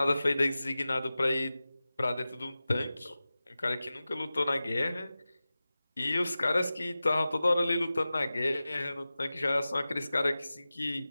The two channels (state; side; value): inverted; both; correlation -0.96